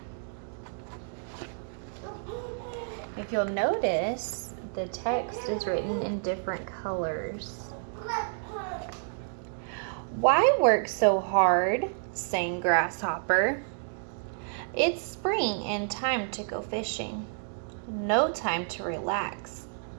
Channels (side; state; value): left; silent; digital silence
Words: If you'll notice, the text is written in different colors. Why work so hard? Sang Grasshopper. It's spring and time to go fishing. No time to relax,